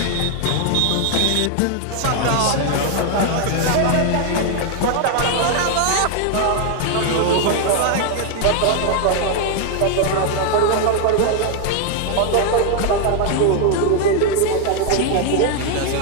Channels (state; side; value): different; both; correlation 0.00